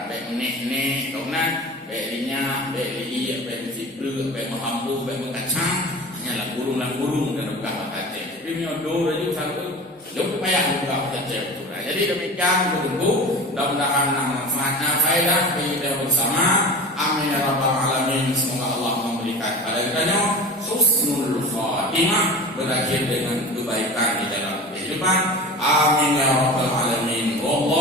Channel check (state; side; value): normal; both; correlation 0.34